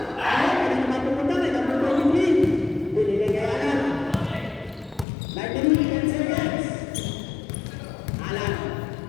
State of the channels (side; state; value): right; drops out; at 5.1 s